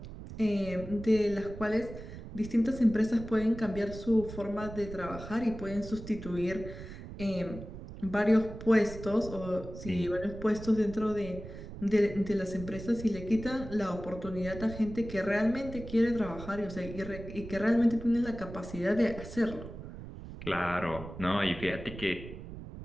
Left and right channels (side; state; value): right; noise; rumble, 12 dB below the sound